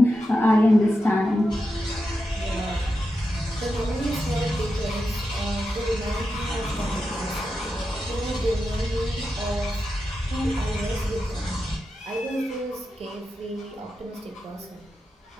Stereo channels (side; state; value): both; normal; correlation 0.89